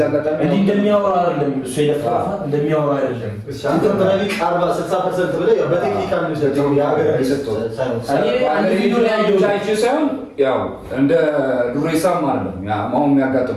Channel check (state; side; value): identical; both; correlation 1.00